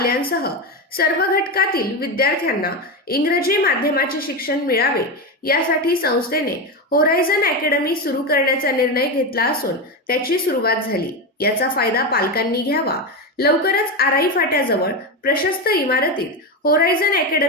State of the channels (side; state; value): both; normal; correlation 0.15